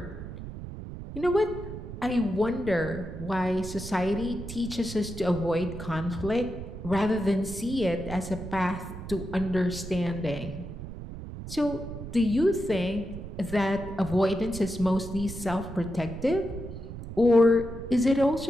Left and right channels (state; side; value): noise; right; rumble, 10 dB below the sound